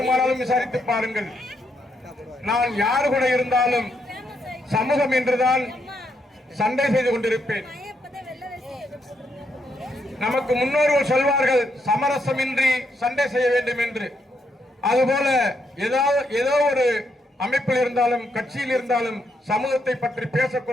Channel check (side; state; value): both; normal; correlation 0.78